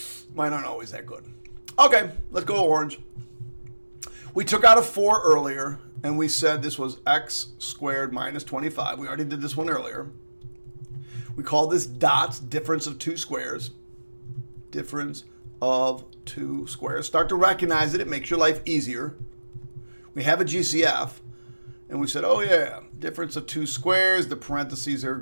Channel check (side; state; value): both; inverted; correlation -1.00